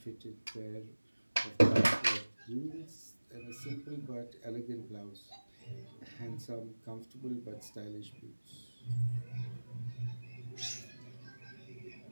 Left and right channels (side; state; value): both; inverted; correlation -1.00